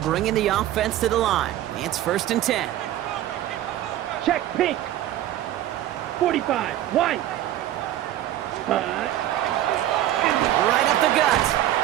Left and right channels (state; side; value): quieter; left; 13.1 dB